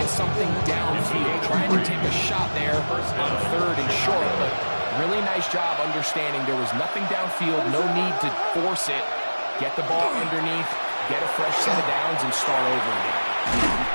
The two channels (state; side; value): inverted; both; correlation -1.00